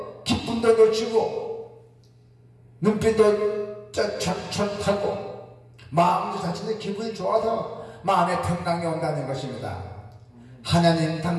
기쁨도 놓치고 눈빛도 촤촤하고 마음도 자체는 기분이 좋아서 마음의 평강이 온다는 것입니다. 하나님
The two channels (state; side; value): identical; both; correlation 1.00